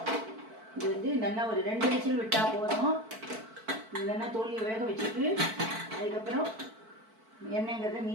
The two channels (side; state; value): left; late; 4.5 ms